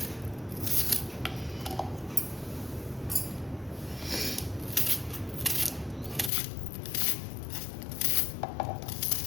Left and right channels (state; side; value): drops out; right; at 6.3 s